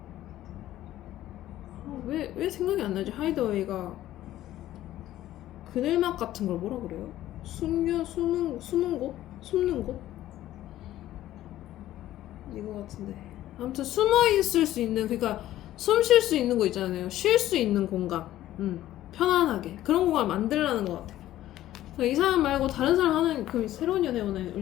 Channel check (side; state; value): right; quieter; 13.8 dB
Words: 왜 생각이 안 나지? hideaway가 그늘막 같은 걸 뭐라 그래요? 숨는 곳? 숨는 곳? 이거 같은데. 아무튼 숨어 있을 수 있는, 그러니까 숨 쉴 수 있는 거 있잖아요. 쉴 수 있는 공간. 편안하게 그런 공간 만들라는 것 같아. 그러니까 이 사람 말고 다른 사람 하는, 그럼 새로운 연애운을